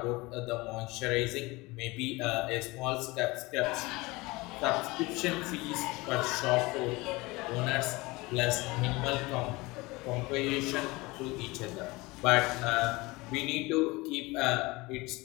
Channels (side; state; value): right; quieter; 22.8 dB